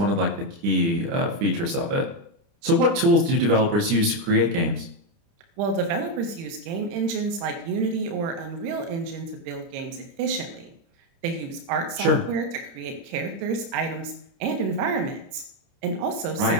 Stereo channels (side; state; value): left; late; 30 ms